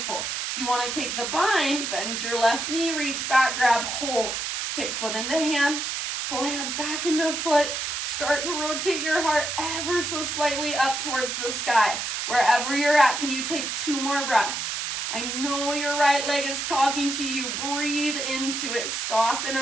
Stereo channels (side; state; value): right; noise; hiss, 3 dB below the sound